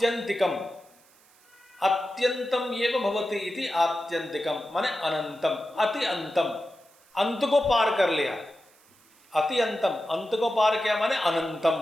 अत्यंतम एव भवति इति आत्यंतिकम माने अनंतम, अति अंतम, अंत को पार कर लिया। अति अंतम, अंत को पार किया माने अनंतम।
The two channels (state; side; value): noise; right; hiss, 30 dB below the sound